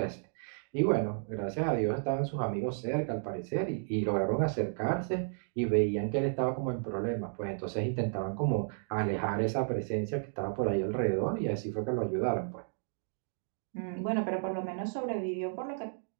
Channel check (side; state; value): left; silent; digital silence